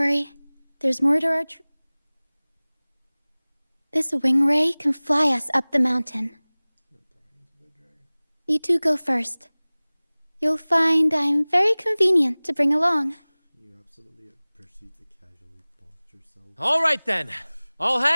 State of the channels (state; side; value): inverted; both; correlation -1.00